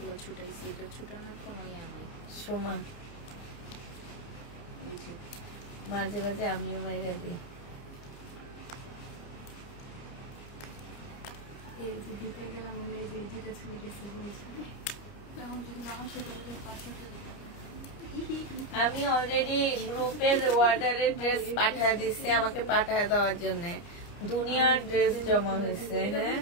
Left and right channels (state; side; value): late; right; 29 ms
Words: ছুটাইছি, এটা ছুটানোর কোনো ইয়া নেই। সমান ওই যে মাঝে মাঝে আমিও মাইরা দিই। এই যে দিতে গেলাম, এই যে দুটো ছবি দিতে বলেছি, এখন যদি না আসে তাহলে 500 টাকা। আমি অলরেডি গ্রুপের অর্ডারের ড্রেস পাঠিয়ে দিচ্ছি আমাকে পাঠিয়ে দেওয়ার জন্য। দুনিয়ার ড্রেস জমা হয়েছে। হ্যাঁ